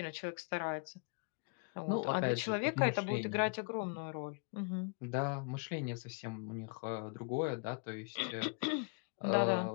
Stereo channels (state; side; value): quieter; right; 36.0 dB